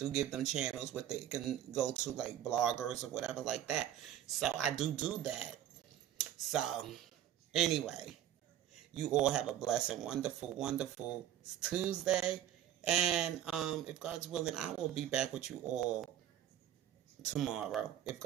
give them channels where they can go to, like bloggers or whatever like that. So I do that. So anyway, you all have a blessed and wonderful, wonderful Tuesday. And if God's willing, I will be back with you all tomorrow, if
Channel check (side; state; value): left; quieter; 11.3 dB